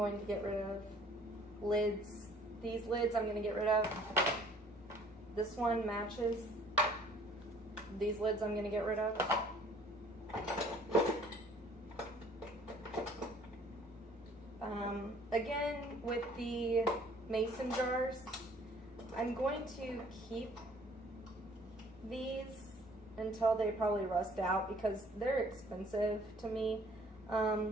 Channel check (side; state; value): both; normal; correlation 0.56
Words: to get rid of lids. These lids I'm going to get rid of. This one matches. These lids I'm going to get rid of. Again, with the mason jars, I'm going to keep these until they probably rust out because they're expensive to me,